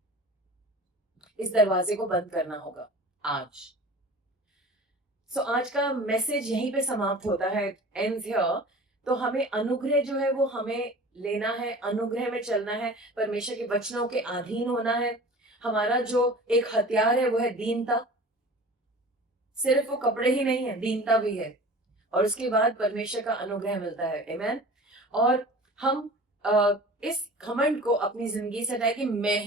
इस दरवाजे को बंद करना होगा आज। सो आज का मैसेज यहीं पे समाप्त होता है, एंड्स हियर। तो हमें अनुग्रह जो है वो हमें लेना है, अनुग्रह में चलना है, परमेश्वर के वचनों के अधीन होना है। हमारा जो एक हथियार है वो है दीनता। सिर्फ वो कपड़े ही नहीं है, दीनता भी है, और उसके बाद परमेश्वर का अनुग्रह मिलता है। आमेन। और हम इस घमंड को अपनी जिंदगी से हटाए कि मैं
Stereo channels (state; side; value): normal; both; correlation 0.40